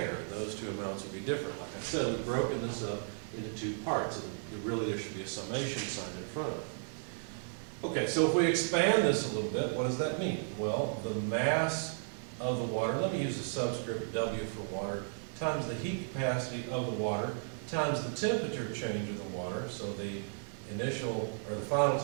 Those two amounts would be different. Like I said, we've broken this up into 2 parts, and really there should be a summation sign in front of it. Okay, so if we expand this a little bit, what does that mean? Well, the mass of the water, let me use the subscript W for water, times the heat capacity of the water, times the temperature change of the water, so the initial, or the final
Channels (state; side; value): silent; left; 55 dB below the other